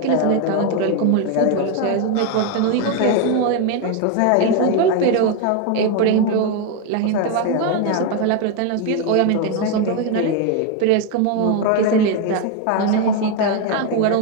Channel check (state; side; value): different; both; correlation 0.01